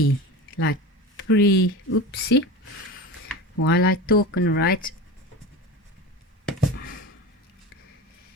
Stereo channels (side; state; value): both; normal; correlation 0.29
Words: like pre, oopsie. While I talk and write,